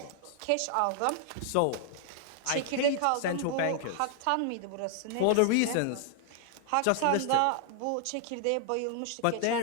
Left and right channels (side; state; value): both; different; correlation 0.00